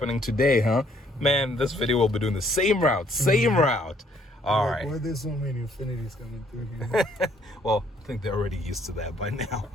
today, huh? Man, this video will be doing the same route, All right. Why are there so many Infinitis coming through here? Well, I think they're already used to that by now.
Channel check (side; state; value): both; normal; correlation 0.65